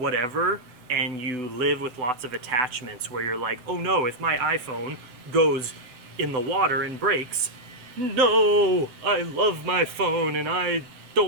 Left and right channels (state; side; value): late; left; 8.0 ms